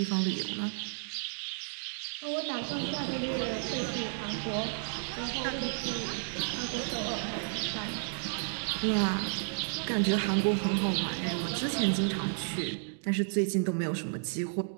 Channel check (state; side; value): silent; left; digital silence